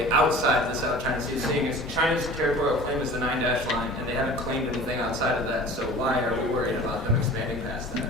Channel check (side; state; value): both; normal; correlation 0.42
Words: outside the South China Sea, seeing as China's territorial claim is the 9-dash line, and they haven't claimed anything outside of that, so why are we worried about them expanding past that?